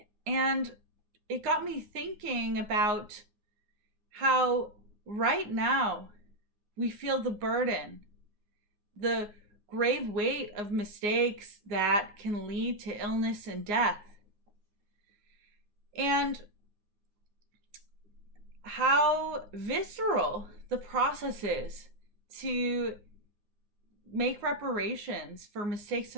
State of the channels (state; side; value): late; left; 9.6 ms